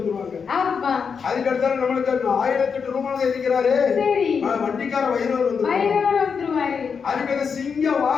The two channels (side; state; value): right; quieter; 6.1 dB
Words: ஆமா அதுக்கடுத்தால நம்மளுக்கு 1008 ரூபாய் இருக்கிறாரு சரி வண்டிக்கார வைரவர் வந்து வைரவர் வந்துருவாரு. அதுக்கு சிங்க